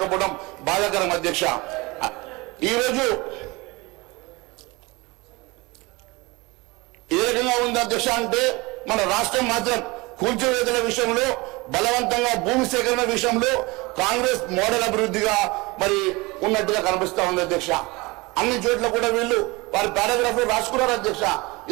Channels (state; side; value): quieter; left; 24.0 dB